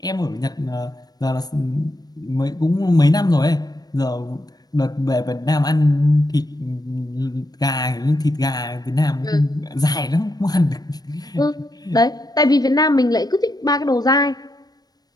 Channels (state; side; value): late; right; 0.19 ms